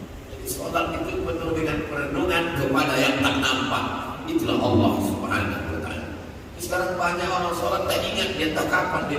Jadi sholat itu penuh dengan perenungan kepada yang tak nampak. Itulah Allah subhanahu wa ta'ala. Sekarang banyak orang sholat tak ingat dia tak kapan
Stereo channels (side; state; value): both; identical; correlation 1.00